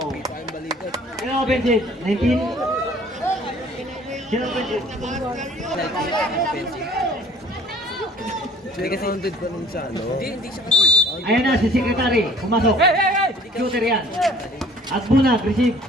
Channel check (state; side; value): normal; both; correlation 0.53